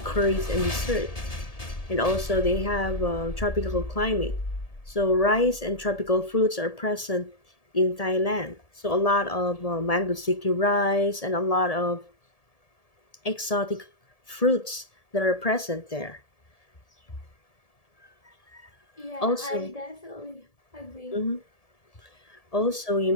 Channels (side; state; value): right; late; 1.7 ms